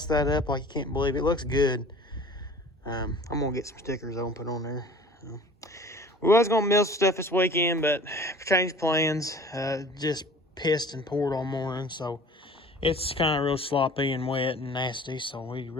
that up like you can't believe it. It looks good. I'm going to get some stickers I'll put on there. We was going to mill some stuff this weekend, but changed plans. Just pissed and poured all morning, so it's kind of real sloppy and wet and nasty, so we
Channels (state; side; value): normal; both; correlation 0.45